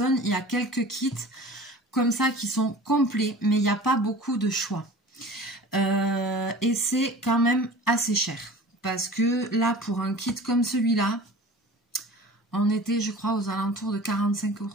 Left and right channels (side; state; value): both; normal; correlation 0.40